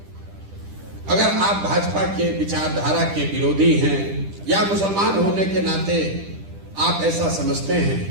अगर आप भाजपा के विचारधारा के विरोधी हैं या मुसलमान होने के नाते आप ऐसा समझते हैं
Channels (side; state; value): left; late; 10 ms